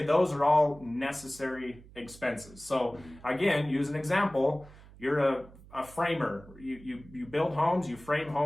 those are all necessary expenses. So again, use an example. You're a framer. You build homes, you frame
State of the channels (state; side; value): noise; right; hum, 21 dB below the sound